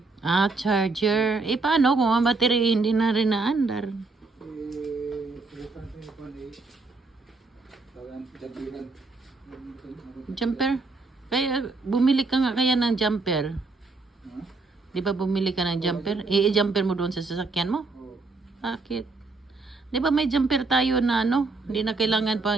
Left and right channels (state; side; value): quieter; left; 3.8 dB